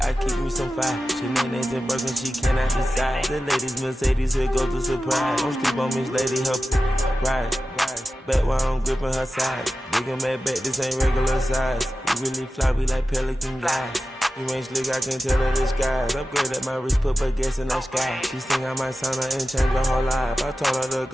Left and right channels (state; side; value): normal; both; correlation 0.94